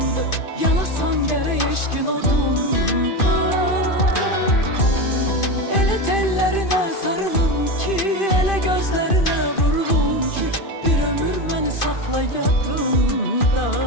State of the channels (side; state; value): right; late; 2.5 ms